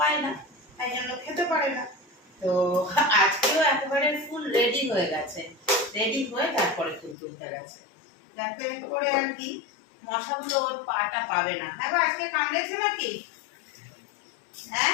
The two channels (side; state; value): right; drops out; at 7.2 s